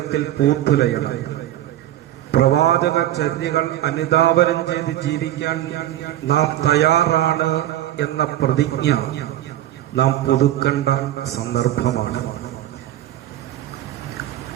പൂത്തുലയണം. പ്രവാചക ചര്യകൾ അനുധാവനം ചെയ്ത് ജീവിക്കാൻ നാം തയ്യാറാണ് എന്ന പ്രതിജ്ഞ നാം പുതുക്കേണ്ട സന്ദർഭമാണ്.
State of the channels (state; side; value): quieter; left; 13.3 dB